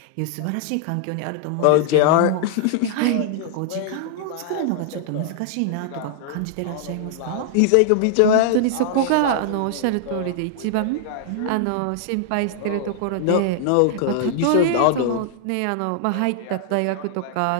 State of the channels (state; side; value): different; both; correlation -0.01